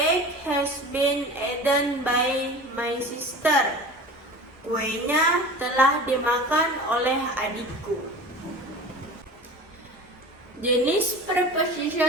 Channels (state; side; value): normal; both; correlation 0.37